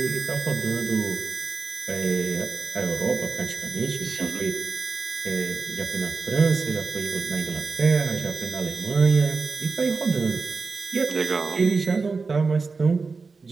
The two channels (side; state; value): left; quieter; 4.5 dB